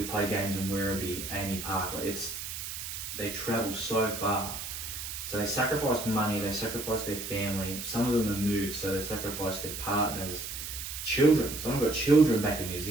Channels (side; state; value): right; noise; hiss, 7 dB below the sound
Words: play games in Werribee, Amy Park. They travel so far. So they sacrifice money, they sacrifice their family. Some of them have moved, so they sacrifice their partners, children. Some have got children back in New